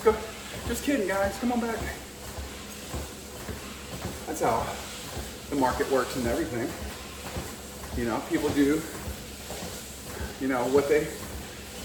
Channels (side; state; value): both; identical; correlation 1.00